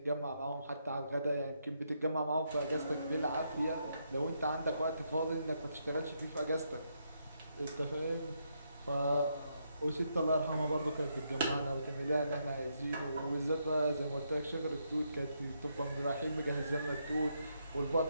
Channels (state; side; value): inverted; both; correlation -0.78